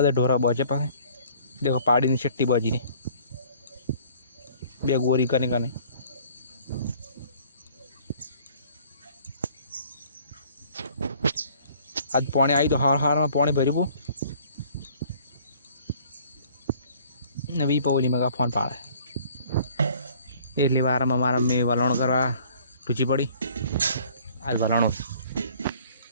ઢોરા બજે પાસે દેખો પાડીની છટ્ટી બજી ને બે ગોરી કરી કને આજ પાણી આવી તો હારમાં પાણી ભર્યું ને વી પવલી મગા ફોન પાડે એટલી વારમાં મારા મેં વલણ કરવા ટૂચી પડી। આજ વલણું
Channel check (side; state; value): both; inverted; correlation -0.55